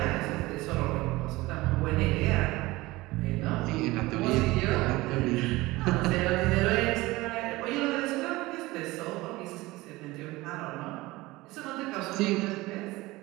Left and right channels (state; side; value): quieter; left; 20.1 dB